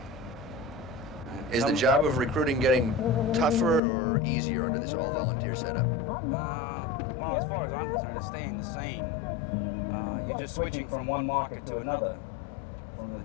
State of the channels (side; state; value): right; drops out; at 3.8 s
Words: Is the job of recruiting getting tougher or easier under this all-volunteer setup? Well, as far as I'm concerned, it's staying the same. You're just switching from one market to another. From